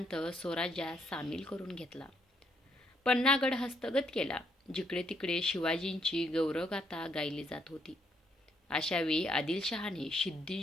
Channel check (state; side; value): normal; both; correlation 0.73